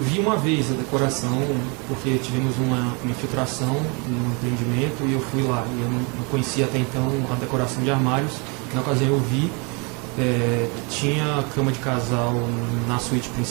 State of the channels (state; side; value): quieter; left; 31.7 dB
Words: uma vez a decoração, porque tivemos uma infiltração no empreendimento e eu fui lá. E eu não conhecia até então a decoração de armários. Na ocasião eu vi. Tinha cama de casal na suíte